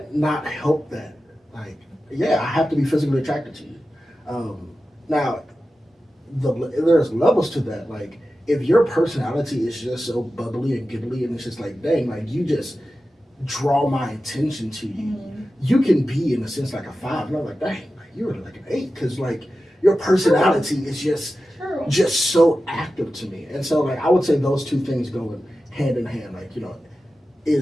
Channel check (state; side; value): normal; both; correlation 0.93